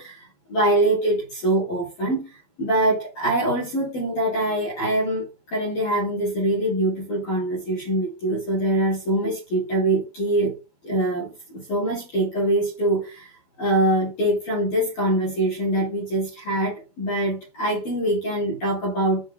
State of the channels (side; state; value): right; late; 12 ms